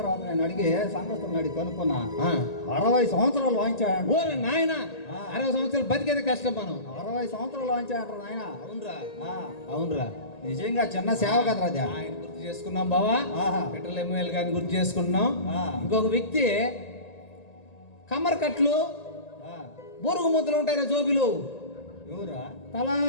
నేను అడిగి సంఘస్థుని అడిగి కనుక్కున్నా ఆ. 60 సంవత్సరాలు వాయించాడు ఓరే నాయన 60 సంవత్సరాలు బతికేది కష్టం మనం 60 సంవత్సరాలు వాయించాడు నాయన అవునరా అవునరా నిజంగా చిన్న సేవ కదరా అది. ఆయన గుర్తు చేసుకున్నాం బావా ఆహా. పెట్రోల్ ఎమ్మెల్యే గారిని గుర్తు చేసుకున్నాం ఆ. ఇంకొక వ్యక్తి కమ్మర్ కట్లు ఆ, బొరుగు ముద్దలు ఉంటాయి జోబిలు ఎవరా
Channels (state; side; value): late; right; 1.8 ms